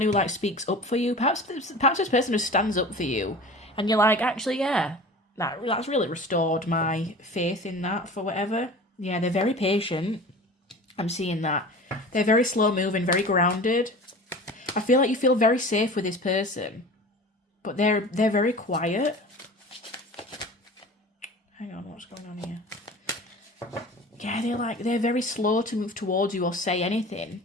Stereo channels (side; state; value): both; normal; correlation 0.38